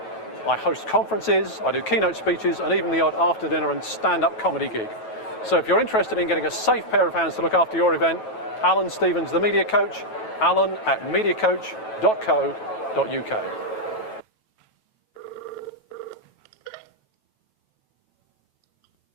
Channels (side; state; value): right; late; 9.2 ms